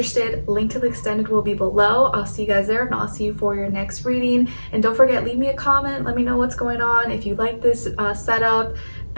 link to the extended will be below. I'll see you guys there. If not, I'll see you for your next reading. And don't forget, leave me a comment. Let me know what's going on. If you like this setup,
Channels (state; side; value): inverted; both; correlation -1.00